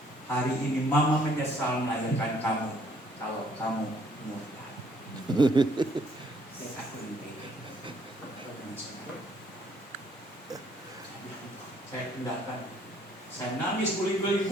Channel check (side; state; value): both; normal; correlation 0.64